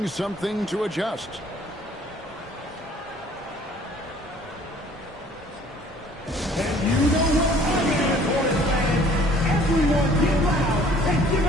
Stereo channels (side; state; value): both; normal; correlation 0.55